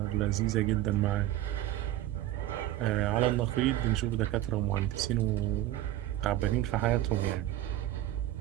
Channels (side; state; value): left; quieter; 13.9 dB